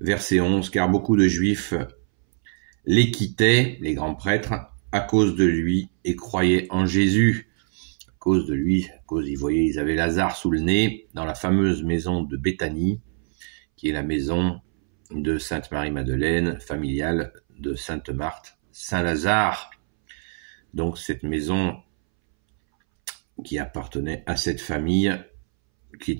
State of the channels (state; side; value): silent; left; 63 dB below the other